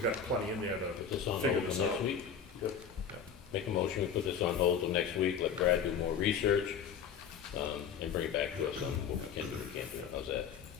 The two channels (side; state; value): right; quieter; 7.1 dB